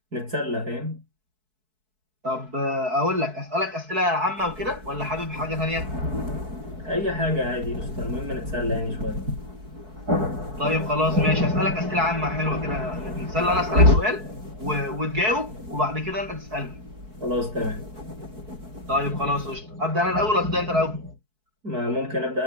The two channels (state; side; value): late; left; 4.6 ms